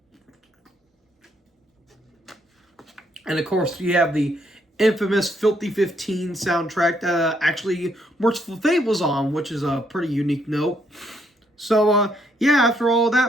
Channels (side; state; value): both; normal; correlation 0.72